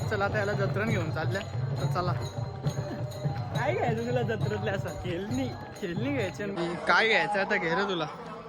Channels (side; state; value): both; identical; correlation 1.00